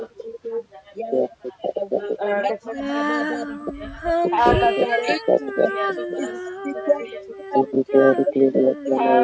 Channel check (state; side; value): identical; both; correlation 1.00